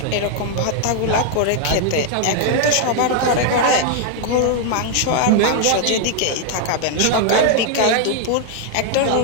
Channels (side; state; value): both; different; correlation 0.00